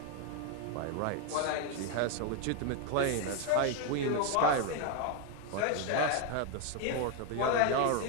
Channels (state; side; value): different; both; correlation 0.01